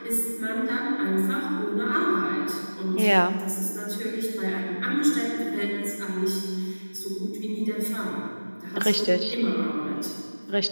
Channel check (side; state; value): both; inverted; correlation -1.00